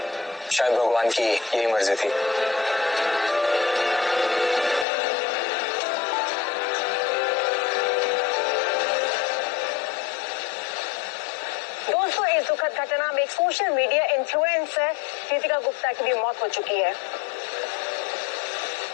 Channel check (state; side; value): drops out; right; at 4.9 s